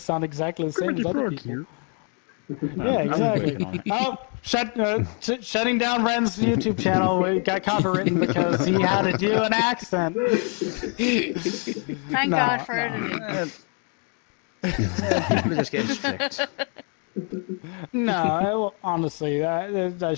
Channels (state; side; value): quieter; right; 39.7 dB